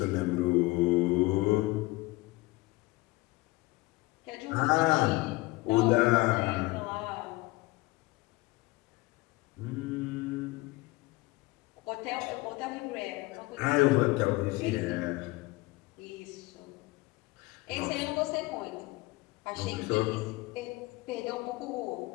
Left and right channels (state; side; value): quieter; right; 21.4 dB